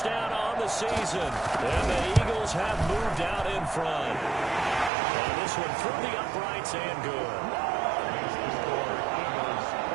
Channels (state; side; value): drops out; left; at 4.9 s